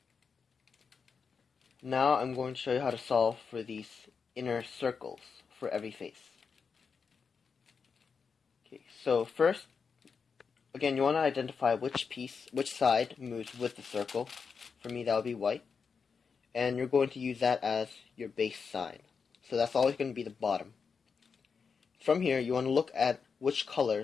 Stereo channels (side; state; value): right; quieter; 5.6 dB